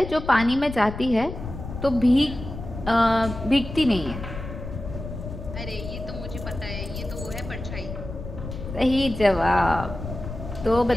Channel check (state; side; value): noise; left; rumble, 9 dB below the sound